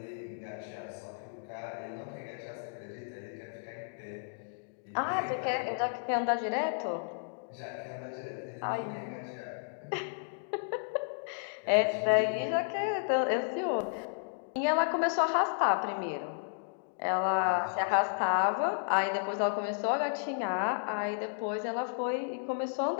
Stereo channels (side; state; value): right; silent; digital silence